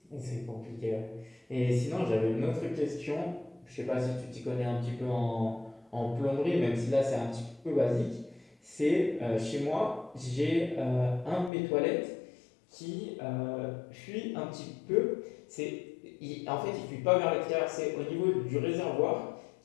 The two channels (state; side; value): drops out; right; at 11.5 s